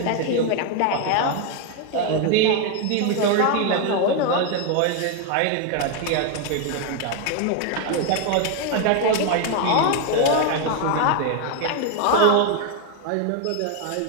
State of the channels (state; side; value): different; both; correlation 0.01